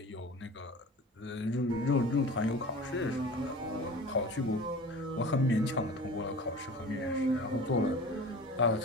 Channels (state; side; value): normal; both; correlation 0.38